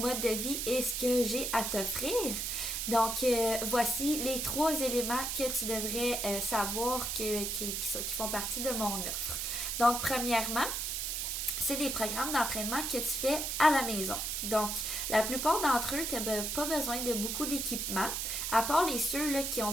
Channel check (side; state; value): right; noise; hiss, 2 dB below the sound